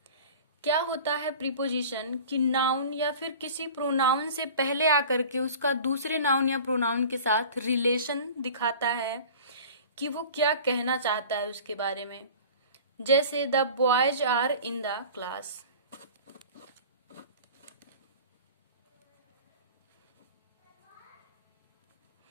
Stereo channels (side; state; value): both; inverted; correlation -0.41